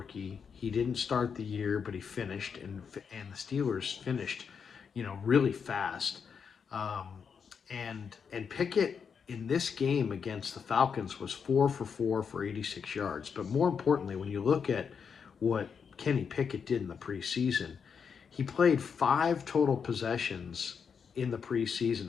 He didn't start the year, but he finished, and the Steelers finished, really fast. And Pickett in this game against the Falcons was 4 for 4 for 86 yards. But more importantly, when you look at what Kenny Pickett did in the preseason, he played 5 total possessions in the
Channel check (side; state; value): right; quieter; 6.5 dB